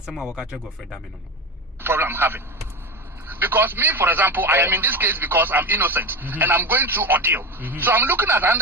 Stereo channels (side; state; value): both; normal; correlation 0.22